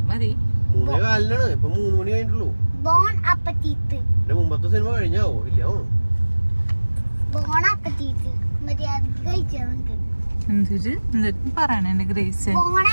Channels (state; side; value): inverted; both; correlation -1.00